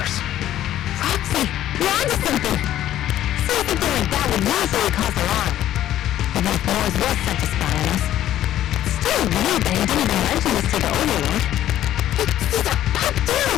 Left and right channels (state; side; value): quieter; right; 12.5 dB